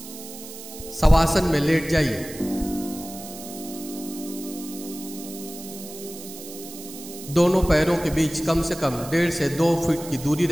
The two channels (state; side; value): noise; right; hiss, 13 dB below the sound